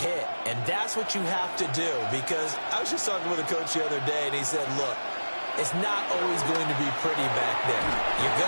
And that's what you have to do, because I was just talking with a coach the other day, and he said, look, it's not always going to be pretty back there. You're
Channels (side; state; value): both; inverted; correlation -1.00